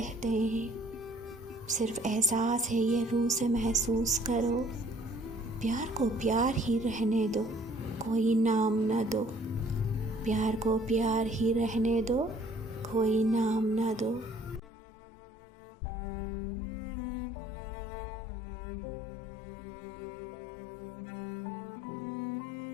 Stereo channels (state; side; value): drops out; right; at 14.7 s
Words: हैं। सिर्फ एहसास है ये रूह से महसूस करो। प्यार को प्यार ही रहने दो, कोई नाम ना दो। प्यार को प्यार ही रहने दो, कोई नाम ना दो।